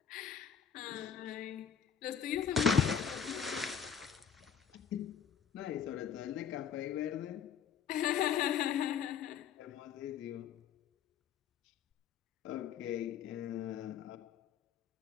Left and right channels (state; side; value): quieter; right; 8.0 dB